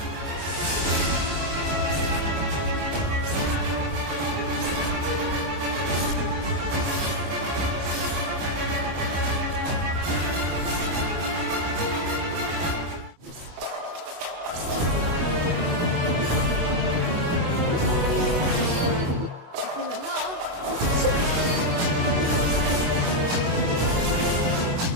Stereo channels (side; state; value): left; late; 24 ms